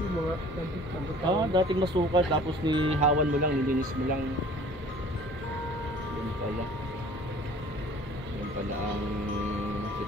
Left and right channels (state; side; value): normal; both; correlation 0.49